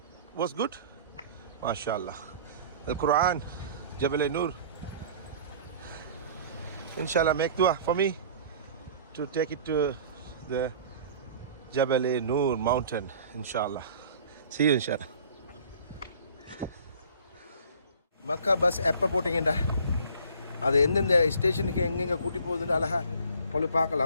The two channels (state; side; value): inverted; both; correlation -0.48